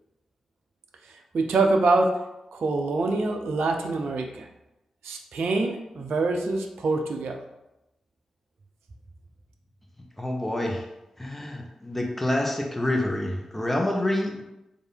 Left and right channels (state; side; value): normal; both; correlation 0.87